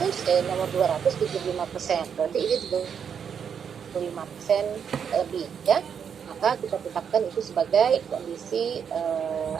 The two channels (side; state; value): left; quieter; 7.4 dB